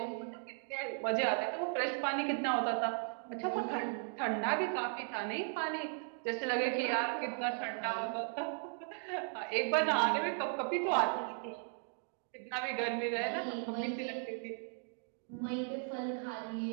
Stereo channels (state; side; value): silent; left; 53 dB below the other